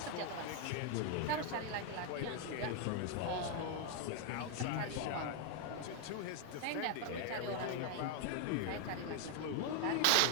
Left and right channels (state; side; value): different; both; correlation 0.00